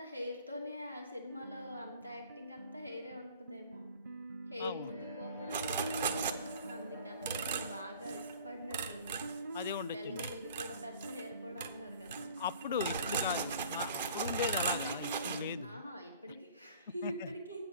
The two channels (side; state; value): both; inverted; correlation -0.49